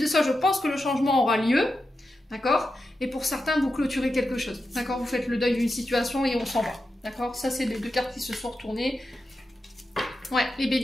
ça, je pense que le changement aura lieu. D'accord? Et pour certains, vous clôturez quelque chose. D'accord? Vous faites le deuil d'une situation et on s'en va. D'accord? Ça, c'est les deux cartes qui se sont retournées. Ouais, les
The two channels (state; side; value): normal; both; correlation 0.89